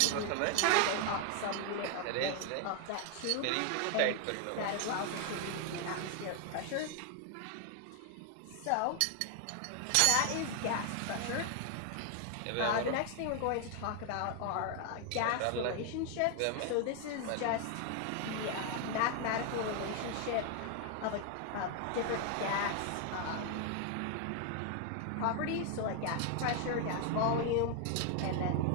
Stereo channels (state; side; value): different; both; correlation 0.00